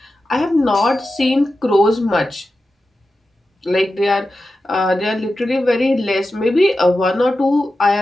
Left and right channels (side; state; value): both; normal; correlation 0.92